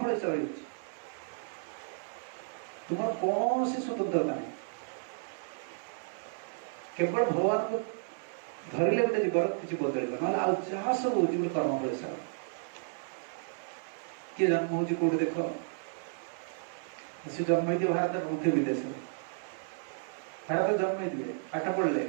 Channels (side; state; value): left; silent; 56 dB below the other